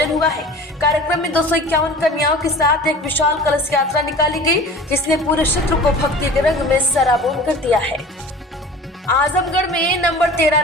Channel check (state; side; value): normal; both; correlation 0.40